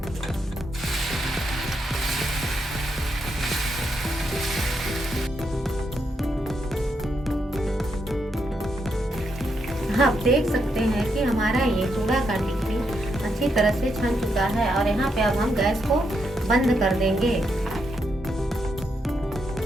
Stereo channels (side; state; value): both; normal; correlation 0.80